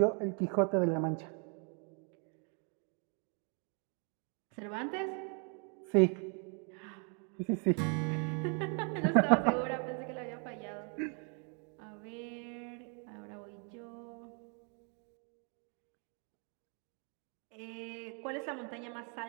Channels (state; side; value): quieter; left; 38.9 dB